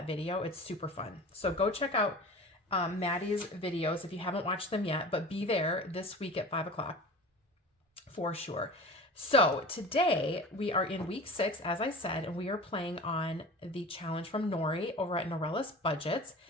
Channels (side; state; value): both; normal; correlation 0.37